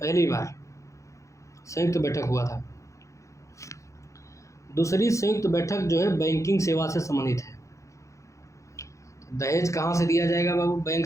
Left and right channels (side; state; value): right; late; 0.15 ms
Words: बार संयुक्त बैठक हुआ था। दूसरी संयुक्त बैठक जो है बैंकिंग सेवा से संबंधित है। दहेज कहाँ से दिया जाएगा बाबू,